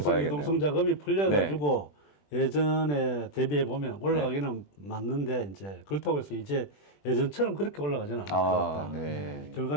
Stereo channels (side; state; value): right; late; 20 ms